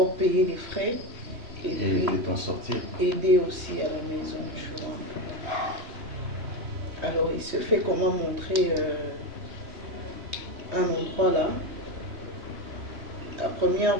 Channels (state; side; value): late; left; 3.2 ms